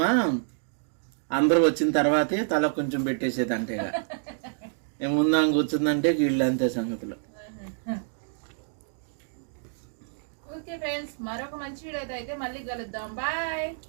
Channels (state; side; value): silent; left; digital silence